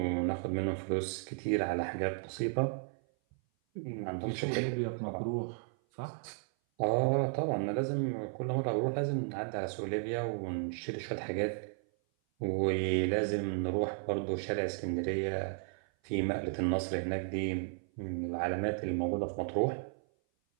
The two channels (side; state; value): left; silent; 55 dB below the other